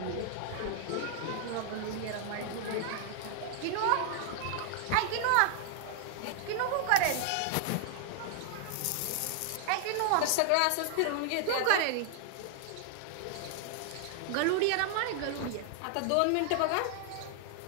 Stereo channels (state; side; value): different; both; correlation 0.00